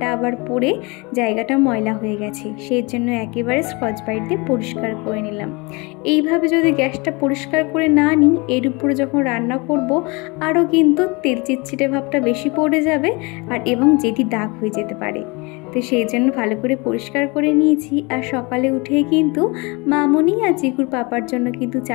আবার পড়ে জায়গাটা ময়লা হয়ে গেছে, সেই জন্য একেবারে স্কচ ব্রাইট দিয়ে পরিষ্কার করে নিলাম। এইভাবে যদি গ্যাসটা পরিষ্কার করে না নিই, এর উপরে যখন রান্না করব আরও কিন্তু তেল চিটচিটে ভাবটা বেশি পড়ে যাবে আর এবং যেটি দাগ হয়ে যেতে পারে। তো সেই জন্য ভালো করে পরিষ্কার করে নিয়েছি। আর সকালে উঠে কিন্তু মামনি আর চিকুর পাপার জন্য কিন্তু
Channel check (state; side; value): quieter; right; 27.4 dB